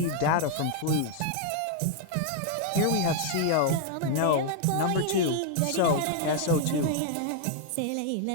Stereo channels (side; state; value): both; different; correlation 0.00